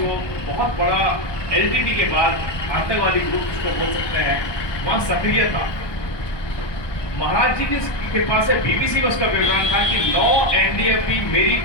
बहुत बड़ा एलटीटी के बाद आतंकवादी ग्रुप जिसको बोल सकते हैं, वहाँ सक्रिय था। महाराज जी की कृपा से बीबीसी में उसका विवरण था कि 9 एनडीएफबी मेरी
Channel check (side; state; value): right; late; 1.2 ms